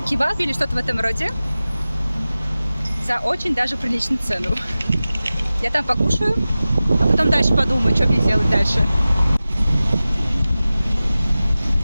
или что-то в этом роде за очень даже приличную цену. Я там покушаю, а потом дальше подумаю, что мне делать дальше.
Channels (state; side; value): inverted; both; correlation -0.96